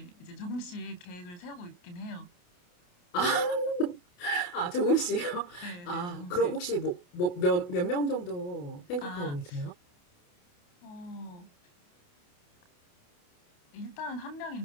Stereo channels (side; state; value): right; late; 28 ms